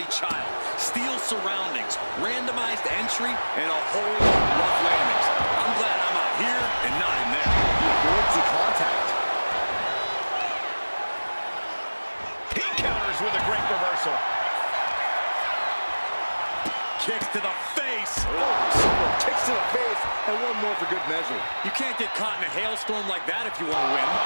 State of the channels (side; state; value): both; inverted; correlation -1.00